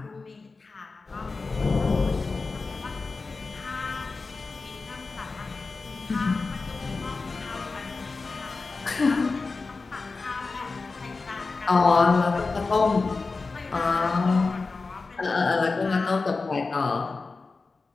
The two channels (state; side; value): quieter; right; 4.0 dB